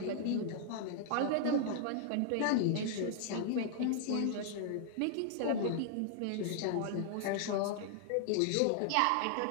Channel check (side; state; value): both; different; correlation 0.00